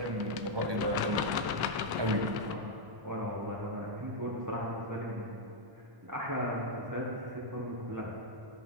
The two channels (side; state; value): left; late; 1.1 ms